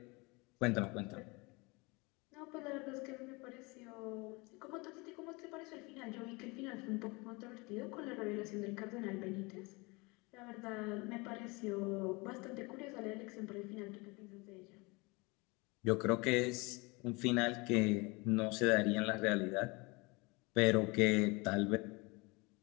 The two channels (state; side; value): quieter; right; 26.5 dB